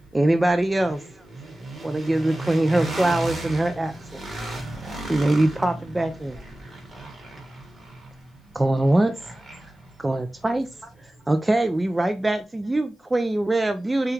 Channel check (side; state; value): both; normal; correlation 0.96